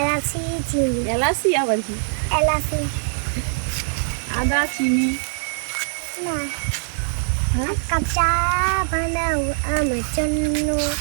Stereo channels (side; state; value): left; silent; digital silence